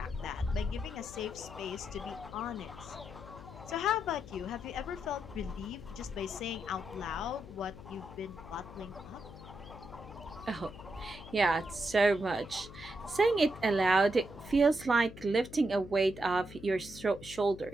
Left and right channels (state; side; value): noise; left; hum, 15 dB below the sound